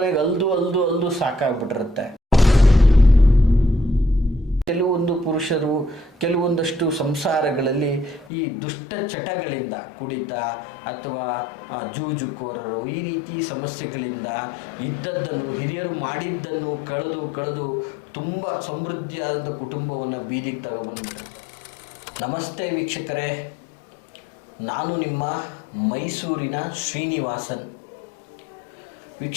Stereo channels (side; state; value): right; drops out; at 8.3 s